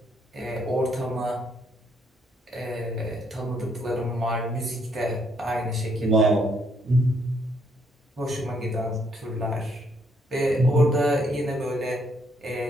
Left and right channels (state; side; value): normal; both; correlation 0.71